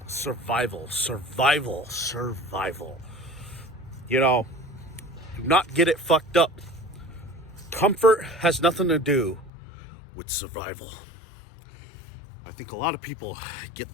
Survival. You know, do not get it fucked up. Comfort has nothing to do with survival. I think a lot of people get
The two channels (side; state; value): right; drops out; at 9.5 s